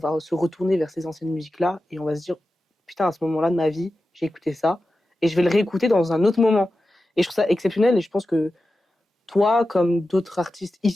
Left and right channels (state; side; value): normal; both; correlation 0.93